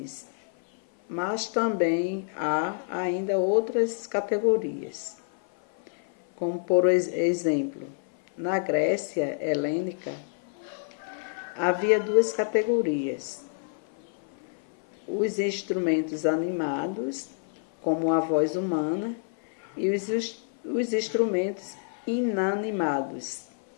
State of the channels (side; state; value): right; silent; 56 dB below the other